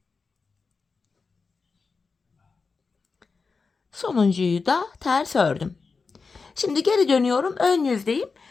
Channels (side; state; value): right; quieter; 4.6 dB